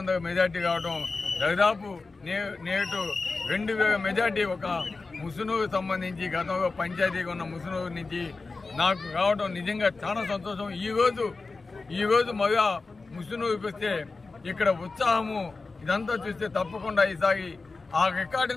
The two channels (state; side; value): quieter; right; 3.9 dB